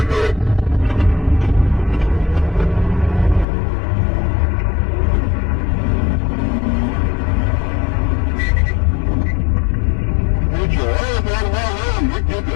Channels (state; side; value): drops out; right; at 3.5 s